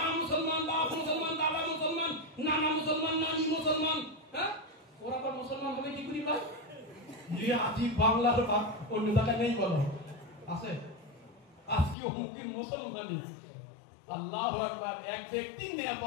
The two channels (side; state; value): right; drops out; at 12.0 s